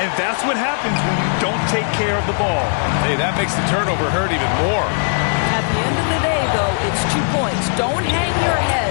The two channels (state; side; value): silent; right; 67 dB below the other